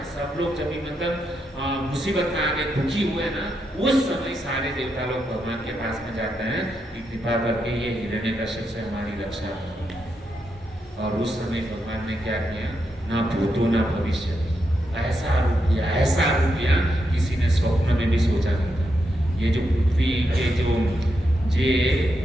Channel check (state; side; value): normal; both; correlation 0.83